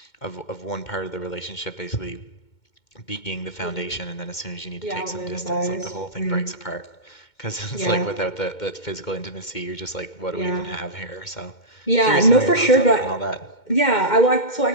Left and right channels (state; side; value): late; right; 2.2 ms